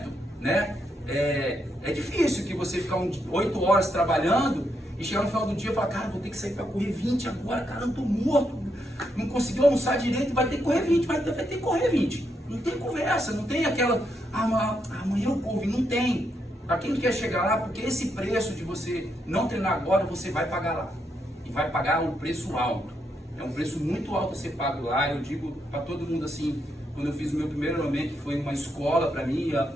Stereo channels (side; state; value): both; normal; correlation 0.80